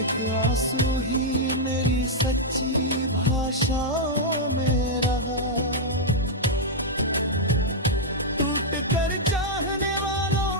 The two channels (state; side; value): normal; both; correlation -0.05